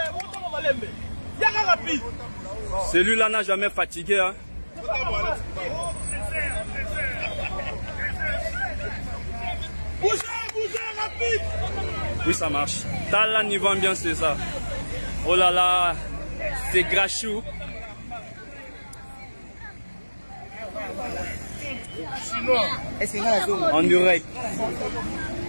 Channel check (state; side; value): inverted; both; correlation -1.00